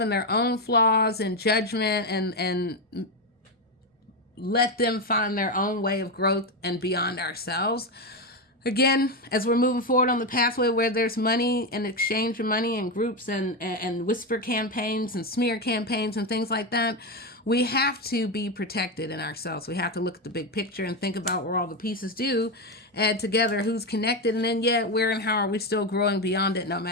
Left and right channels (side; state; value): both; normal; correlation 0.11